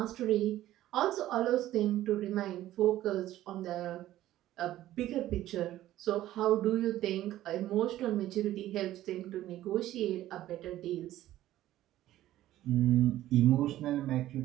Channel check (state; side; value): quieter; left; 14.1 dB